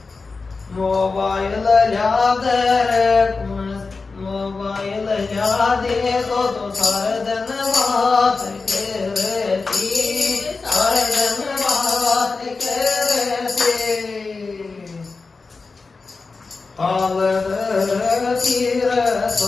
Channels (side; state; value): right; quieter; 4.2 dB